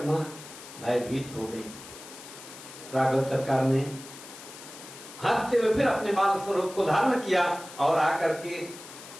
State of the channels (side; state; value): left; noise; hiss, 15 dB below the sound